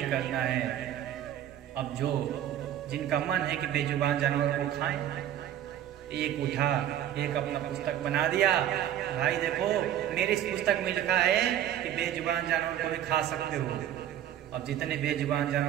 करना है। अब जो जिनका मन है कि बेजुबान जानवर को खाएं, एक उठा, एक अपना पुस्तक बना दिया, भाई देखो मेरी इस पुस्तक में लिखा है कि बेजुबान जानवर को भी खा सकते हो। अब जितने बेजुबान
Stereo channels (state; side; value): quieter; left; 11.3 dB